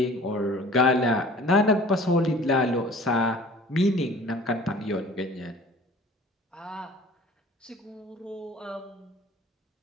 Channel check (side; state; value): both; normal; correlation 0.46